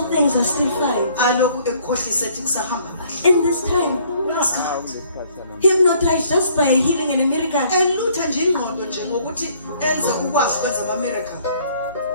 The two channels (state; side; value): inverted; both; correlation -0.61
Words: things are still fine. Alokhu ekukhohlisa ethi kusahamba kahle. In this time, hypnotized just by healing and a miracle. Elutha nje ingqondo nje ngokuthi enze ukwazi ukwenza ama-miracle.